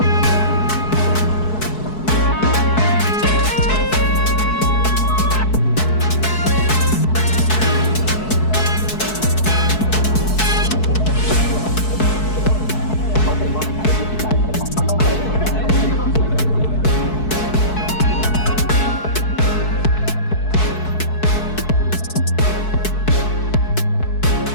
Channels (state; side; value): late; right; 4.6 ms